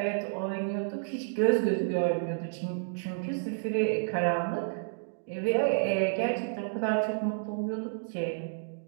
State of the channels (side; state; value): left; silent; digital silence